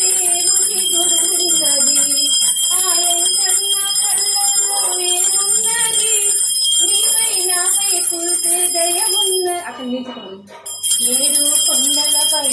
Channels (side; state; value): both; identical; correlation 1.00